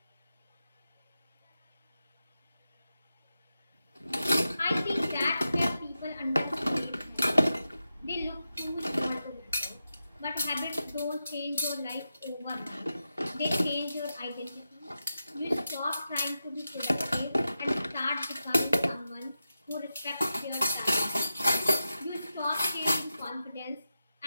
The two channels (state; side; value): inverted; both; correlation -0.90